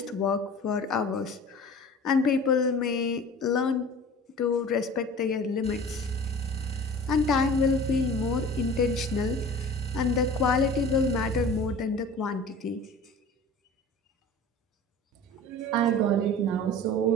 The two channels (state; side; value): normal; both; correlation 0.41